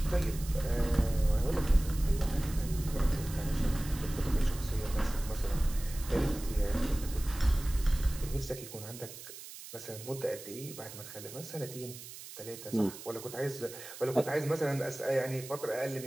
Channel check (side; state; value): right; noise; hiss, 13 dB below the sound